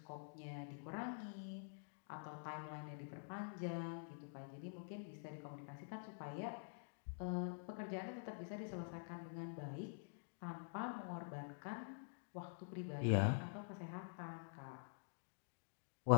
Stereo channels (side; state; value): right; silent; digital silence